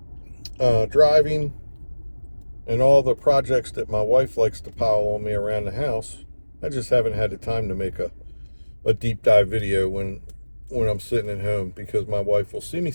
driving, and all the projects that my wife likes to pile on me around the house, I just haven't had the time to make a deep dive video when I'm sitting at home, because my wife will see me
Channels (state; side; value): inverted; both; correlation -1.00